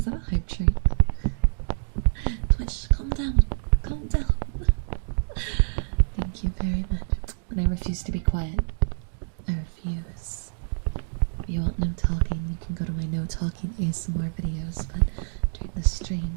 that a hype train? Twitch, calm down. Calm down. Thank you very much. And I refuse to be quiet. I refuse. If you want no talking, you can go to my no talking ASMR videos, but during the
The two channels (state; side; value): silent; left; digital silence